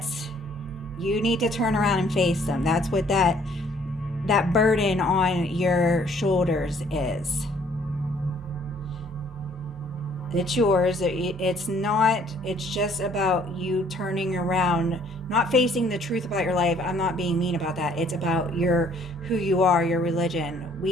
you need to turn around and face them. That's what that burden on your shoulders is. It's yours. It's not, it's just about you turning around, not facing the truth about your life. I'm not being mean about that. It's about who you are, your religion.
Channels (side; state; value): both; normal; correlation 0.61